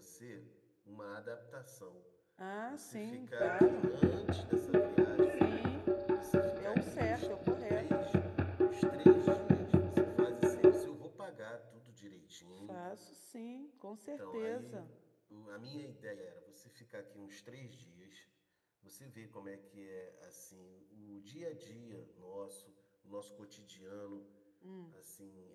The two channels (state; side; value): identical; both; correlation 1.00